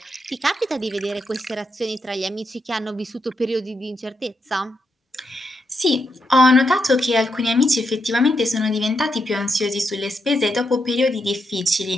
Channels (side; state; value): both; normal; correlation 0.82